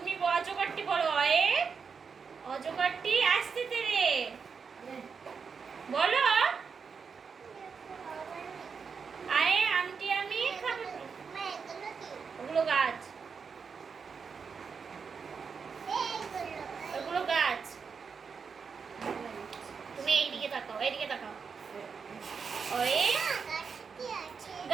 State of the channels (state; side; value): quieter; left; 5.8 dB